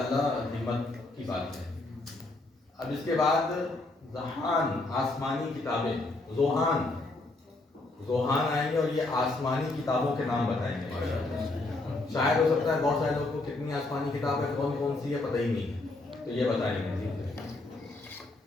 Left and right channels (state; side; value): quieter; right; 3.0 dB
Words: हिम्मत की बात है। अब इसके बाद ज़हान, आसमानी किताबें, ज़ोहान आएंगे और ये आसमानी किताबों के नाम बताएंगे माशाअल्लाह। शायद हो सकता है बहुत सारे लोगों को कितनी आसमानी किताब है, कौन कौन सी है पता ही नहीं है, तो ये बताएंगे।